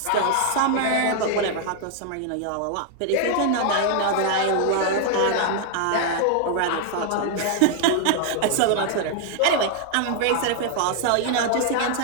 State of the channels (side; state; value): both; different; correlation 0.00